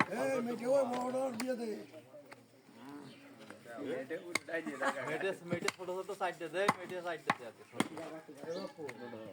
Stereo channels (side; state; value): both; identical; correlation 1.00